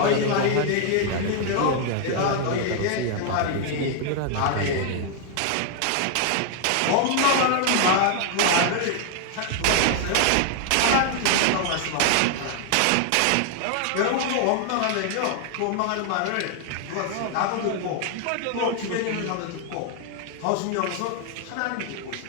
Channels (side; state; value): both; different; correlation 0.00